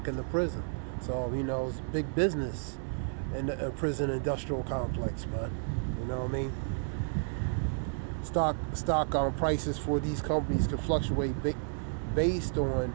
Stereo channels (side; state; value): left; silent; 56 dB below the other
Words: in the prison. So, it's big business in the prison industrial complex, man. You know what I mean? stock prices for these companies can fluctuate based on